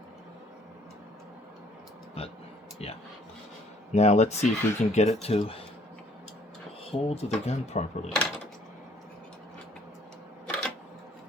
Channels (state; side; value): normal; both; correlation 0.61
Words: But yeah. Now let's see if we can get it to hold the gun properly.